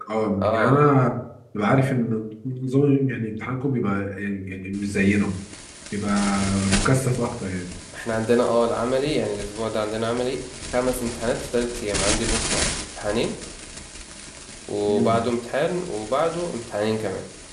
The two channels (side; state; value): both; identical; correlation 1.00